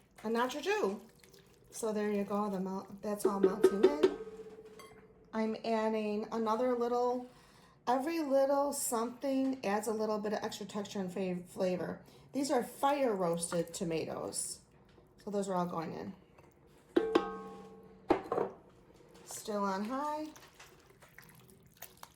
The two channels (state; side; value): identical; both; correlation 1.00